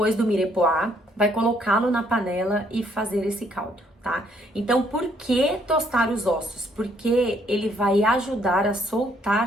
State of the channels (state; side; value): normal; both; correlation 0.68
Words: do mirepoix, vai colocá-lo na panela e fazer esse caldo, tá? Então, por que tostar os ossos? Porque ele vai ajudar a